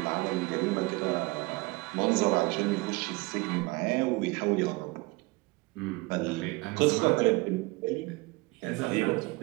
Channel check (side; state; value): left; quieter; 24.3 dB